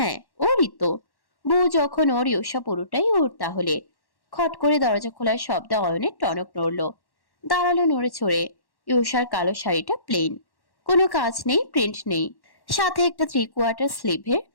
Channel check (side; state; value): right; late; 1.1 ms